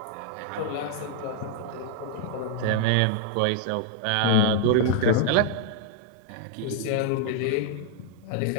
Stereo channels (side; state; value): both; different; correlation 0.00